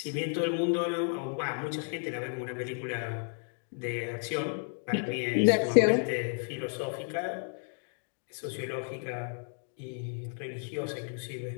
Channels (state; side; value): silent; right; 56 dB below the other